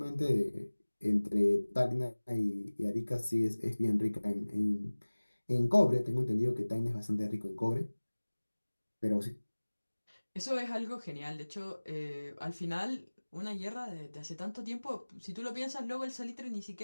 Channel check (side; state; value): both; inverted; correlation -1.00